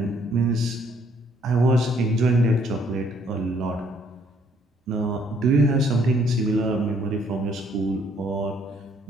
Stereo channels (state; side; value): normal; both; correlation 0.65